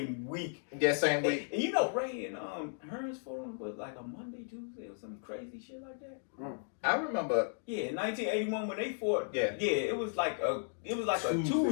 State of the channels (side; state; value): right; silent; digital silence